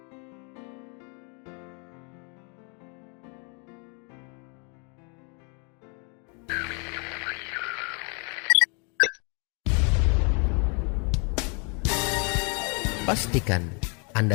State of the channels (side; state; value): right; quieter; 35.7 dB